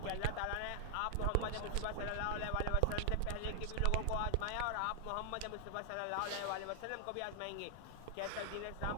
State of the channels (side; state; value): both; different; correlation 0.00